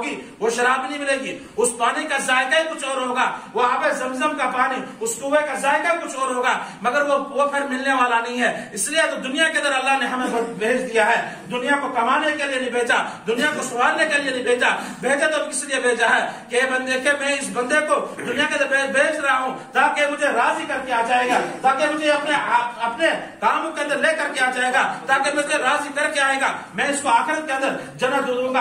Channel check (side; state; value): both; identical; correlation 1.00